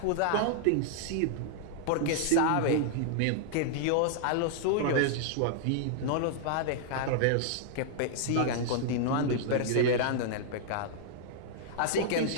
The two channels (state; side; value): different; both; correlation -0.01